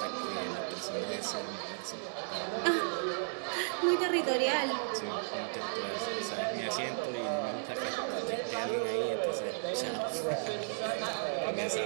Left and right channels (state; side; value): silent; left; digital silence